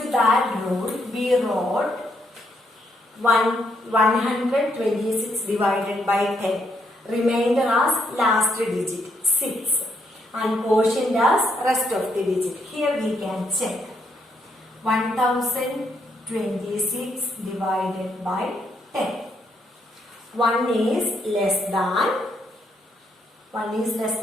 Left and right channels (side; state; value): both; normal; correlation 0.76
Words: to that rule, we wrote 126 divided by 10. Remainder as last digit 6 and quotient as rest of the digit. Here we can check. 1026 divided by 10. 1 is less than